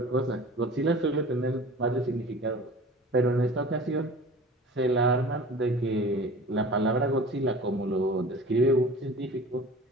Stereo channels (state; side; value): normal; both; correlation 0.41